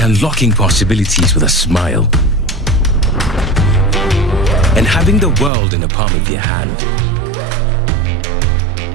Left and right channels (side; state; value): left; drops out; at 5.5 s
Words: unlocking possibilities with a smile. And having the world in the palm of your hand.